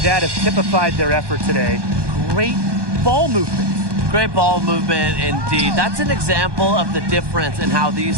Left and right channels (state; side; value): late; left; 1.2 ms